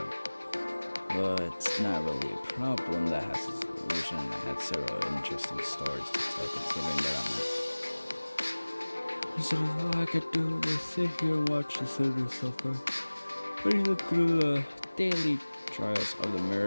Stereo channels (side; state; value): both; inverted; correlation -1.00